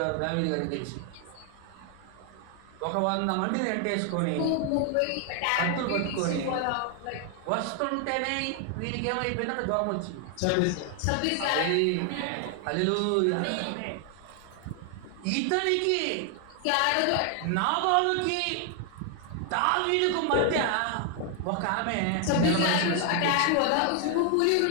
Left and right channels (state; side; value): different; both; correlation 0.00